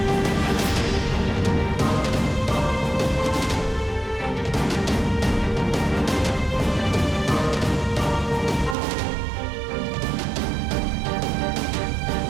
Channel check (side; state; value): left; drops out; at 8.8 s